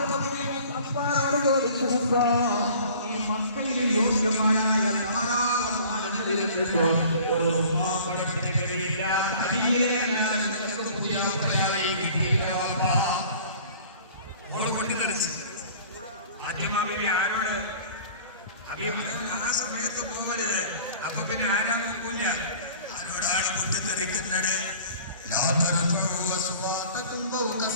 ഈ മക്കയിലെ യോഗ്യമായ ധാരാളം ഒരു റുമാപ്പണത്തിന് കഴിയില്ല. ആരോട് ആ സമയത്ത് പോകരുത്. അപ്പൊ പിന്നെ ആരാ നോക്കൂല, ആരോടാണ് പൊട്ടിത്തെറിക്കുന്നത്?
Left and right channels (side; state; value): both; inverted; correlation -0.47